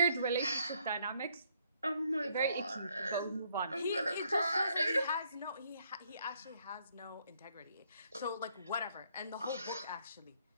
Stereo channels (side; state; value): both; inverted; correlation -0.69